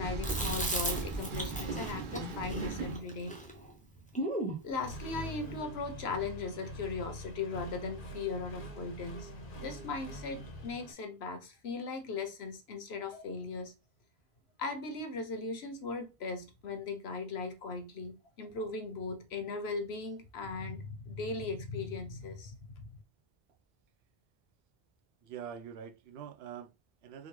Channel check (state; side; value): normal; both; correlation 0.00